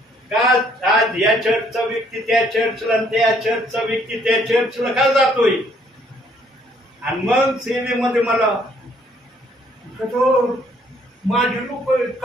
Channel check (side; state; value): both; normal; correlation 0.65